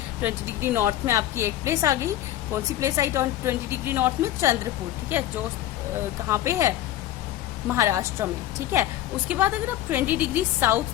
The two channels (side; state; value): right; quieter; 13.4 dB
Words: 20 डिग्री नॉर्थ में आपकी एक प्लेस आ गई, कौन सी प्लेस आई 20 डिग्री नॉर्थ में चंद्रपुर, ठीक है, जो कहाँ पे है महाराष्ट्र में, ठीक है। उसके बाद अगर आप 20 डिग्री